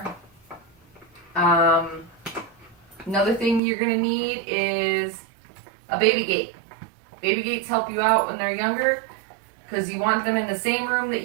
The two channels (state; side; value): drops out; left; at 3.6 s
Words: Another thing you're going to need is a baby gate. Baby gates help you out when they're younger because you want them in the same room that